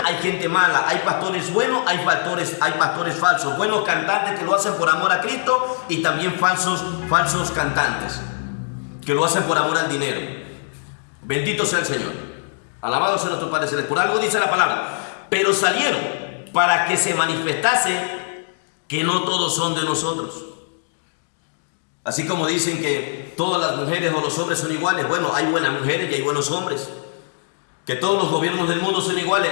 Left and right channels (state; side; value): silent; right; digital silence